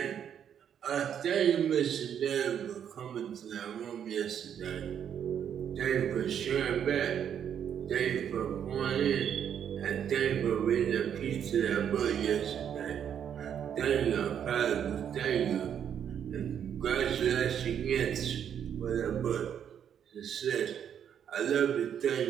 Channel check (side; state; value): left; quieter; 8.8 dB